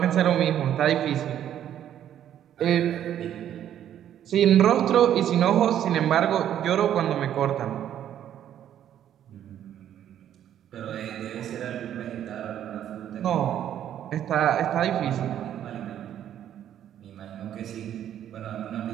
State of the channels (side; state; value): left; quieter; 10.6 dB